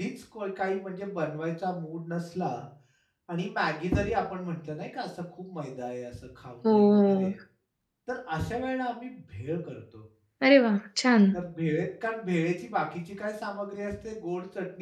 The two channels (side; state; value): both; identical; correlation 1.00